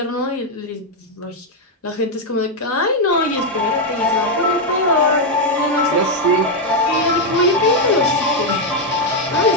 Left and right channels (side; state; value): both; normal; correlation 0.01